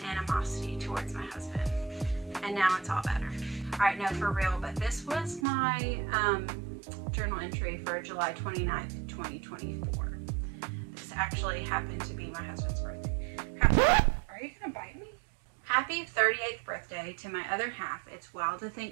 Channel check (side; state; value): left; drops out; at 5.5 s